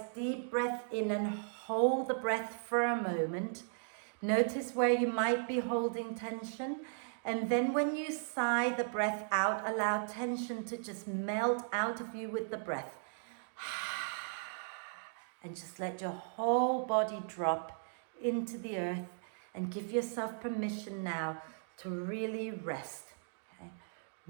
deep breath in and hold the breath for a moment. Notice where you might be holding tension. And then when you sigh the breath out, allow tension to just melt out of you with the breath. And just let your whole body drop into the earth and give yourself permission now to really rest. Okay?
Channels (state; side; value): silent; left; digital silence